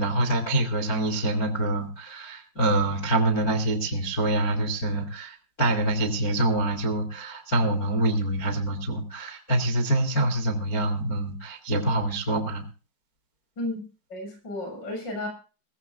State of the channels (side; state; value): right; late; 4.5 ms